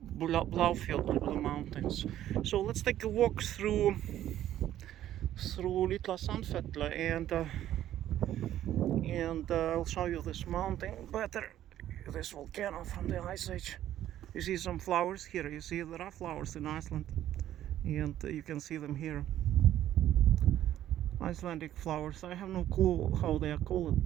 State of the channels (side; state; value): left; quieter; 12.2 dB